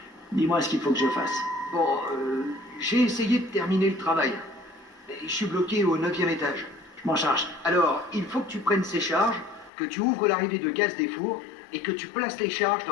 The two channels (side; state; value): right; drops out; at 9.7 s